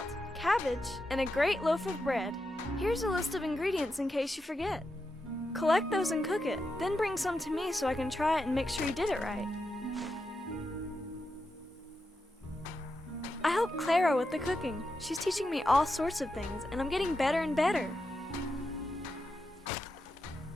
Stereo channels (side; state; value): both; normal; correlation 0.87